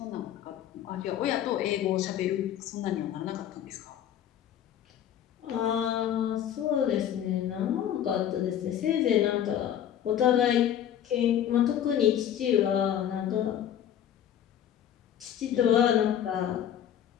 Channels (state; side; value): quieter; right; 10.2 dB